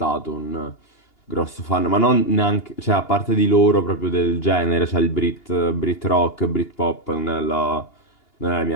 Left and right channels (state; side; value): late; right; 2.8 ms